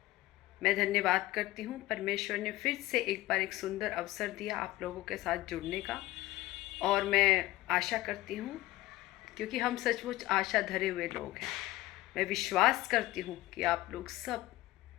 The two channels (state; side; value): quieter; right; 17.3 dB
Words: मैं धन्यवाद करती हूँ, परमेश्वर ने फिर से एक बार एक सुंदर अवसर दिया आप लोगों के साथ जुड़ने का। और मैं आशा करती हूँ, क्योंकि हम सचमुच आशा धरे हुए लोग हैं, मैं विश्वास करती हूँ कि आप लोग सब